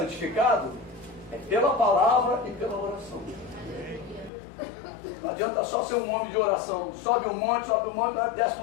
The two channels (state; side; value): drops out; right; at 4.3 s